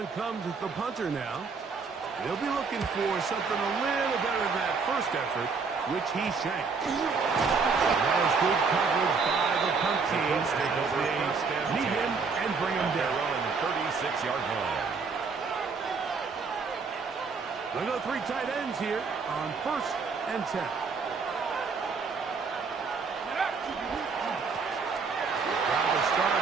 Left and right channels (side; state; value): left; quieter; 4.9 dB